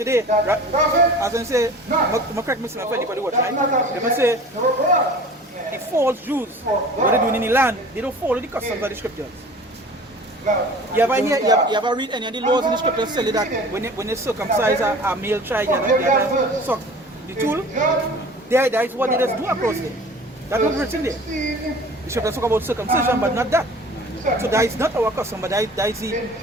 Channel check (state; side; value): normal; both; correlation 0.43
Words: right? As I say, I'm correct me if anybody watch, right? They must say the false Jews, what they doing in the land, they don't follow the customs of the scriptures. You ever read any of the laws in the scriptures tell you that when they circumcise a male child, you have to suck the tool? That is what they just do across there. That's not written there. The scriptures talk about circumcision, but not that. So that is not our custom, but that is